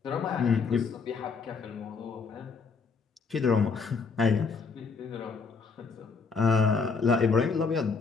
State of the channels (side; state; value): right; quieter; 5.0 dB